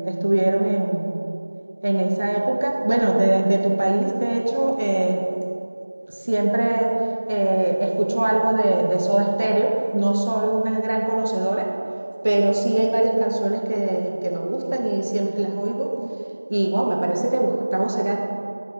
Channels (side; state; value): both; inverted; correlation -1.00